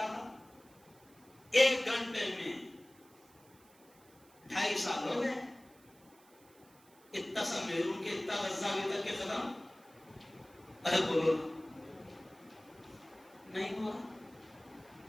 تھا؟ 1 گھنٹے میں. 2.5 سال ہو گئے، اتنا سا میرون کے اتنا غزہ ابھی تک کے ختم. ارے بولو نہیں ہوا.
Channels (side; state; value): right; noise; hiss, 27 dB below the sound